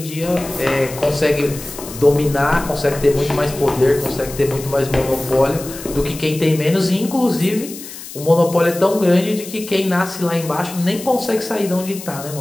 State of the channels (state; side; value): noise; left; hiss, 13 dB below the sound